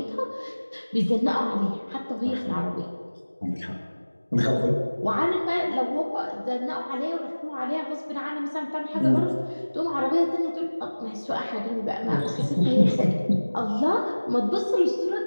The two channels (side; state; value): both; inverted; correlation -1.00